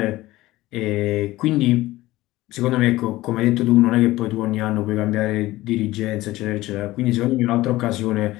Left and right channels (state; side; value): quieter; right; 17.6 dB